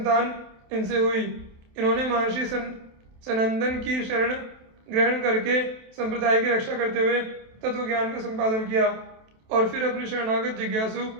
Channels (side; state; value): left; late; 27 ms